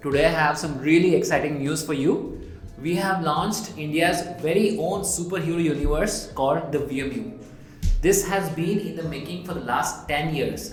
Today I have some really exciting news for you. We have launched India's very own superhero universe called the VMU. This has been in the making for the last 10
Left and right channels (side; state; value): both; identical; correlation 1.00